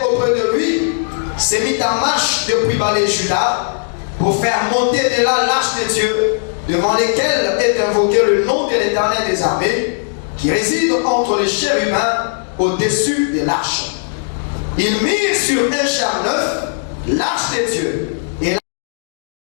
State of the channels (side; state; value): right; silent; digital silence